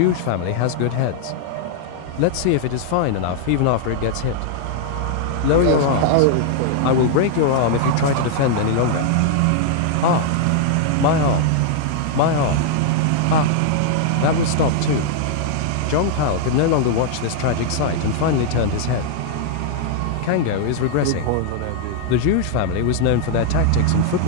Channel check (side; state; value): both; different; correlation 0.00